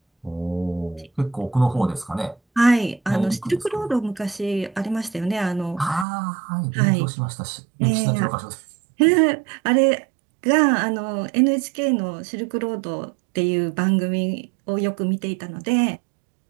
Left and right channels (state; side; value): drops out; left; at 6.1 s